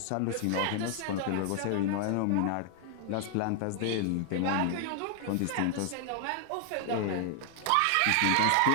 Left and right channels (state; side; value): different; both; correlation 0.00